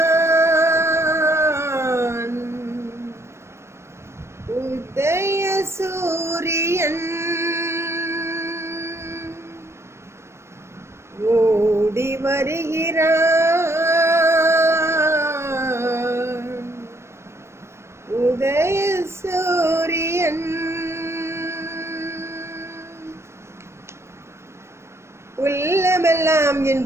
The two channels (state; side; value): late; left; 0.13 ms